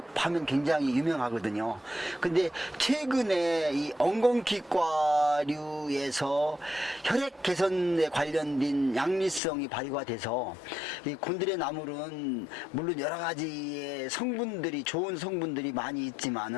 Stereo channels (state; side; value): drops out; right; at 9.4 s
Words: 하면 굉장히 유명하거든요. 근데 최근에 이 엉겅퀴과류에서 혈액 개선에 관련된 양리성이 발휘가 돼서 이 곤드레 나물은 물론 여러 가지의 성분들이 좋은 성분들이 많이